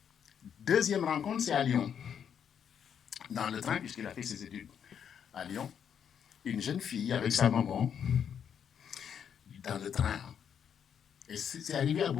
Deuxième rencontre, c'est à Lyon. Dans le train, puisqu'il a fait ses études à Lyon, une jeune fille avec sa maman dans le train. Et c'est arrivé à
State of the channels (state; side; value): quieter; right; 8.1 dB